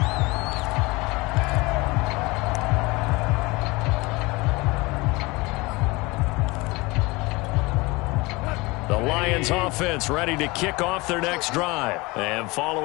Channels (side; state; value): right; quieter; 23.6 dB